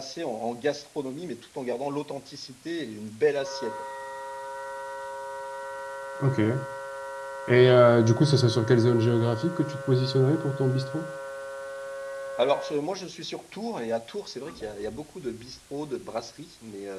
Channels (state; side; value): identical; both; correlation 1.00